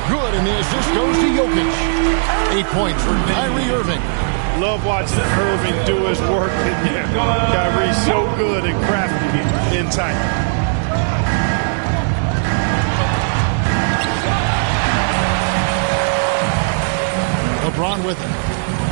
Good, and the assist goes to Jokic. 8 points for Kyrie Irving. Love watching Irving do his work in there. Kyrie's so good and crafty in tight. LeBron with it.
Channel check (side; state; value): left; silent; digital silence